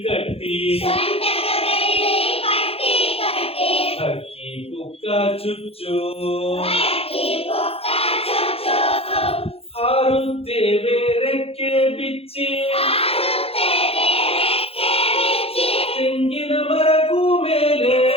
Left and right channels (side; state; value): right; late; 0.28 ms